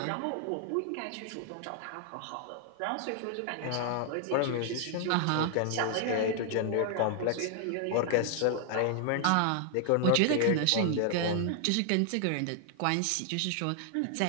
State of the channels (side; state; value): both; different; correlation 0.00